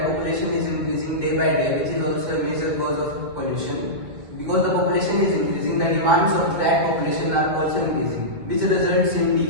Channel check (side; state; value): left; late; 1.9 ms